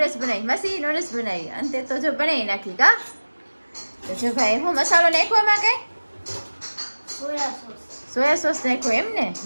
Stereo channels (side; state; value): both; inverted; correlation -1.00